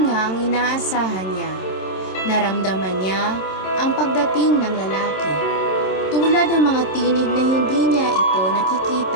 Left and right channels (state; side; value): late; right; 27 ms